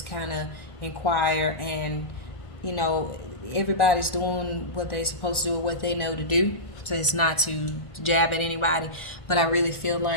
kind of inquire, and you know everybody's doing what they're supposed to do, what they know to do. So it's not to jab at anybody, but I really feel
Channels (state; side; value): late; right; 1.4 ms